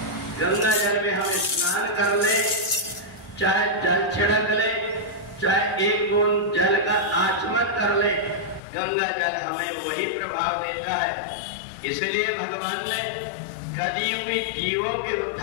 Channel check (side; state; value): right; drops out; at 8.6 s